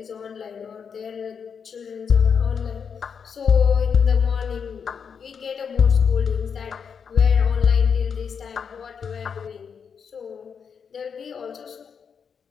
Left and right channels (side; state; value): right; quieter; 6.6 dB